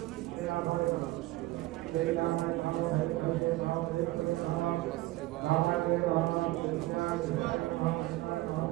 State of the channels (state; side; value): quieter; left; 18.2 dB